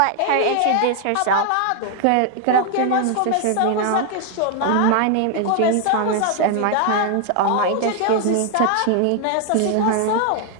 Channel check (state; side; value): different; both; correlation 0.00